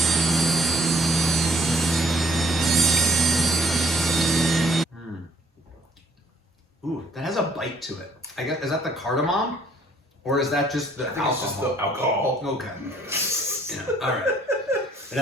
Ooh, that has a bite to it. I guess, is that the cardamom? Or is that just the alcohol? It's just the alcohol. Okay. Yeah, all right. It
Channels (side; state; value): both; normal; correlation 0.61